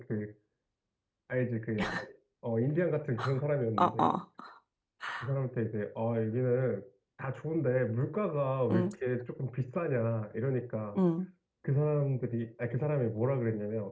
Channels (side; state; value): both; identical; correlation 1.00